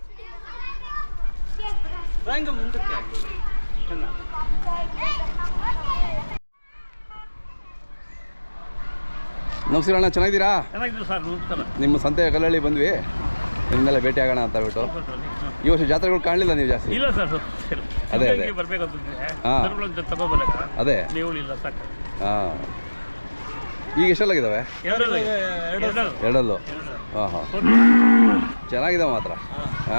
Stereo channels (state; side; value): inverted; both; correlation -1.00